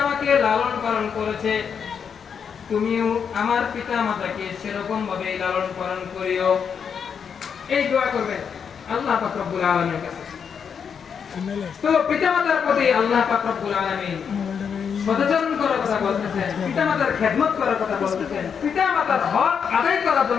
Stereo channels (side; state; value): right; quieter; 6.9 dB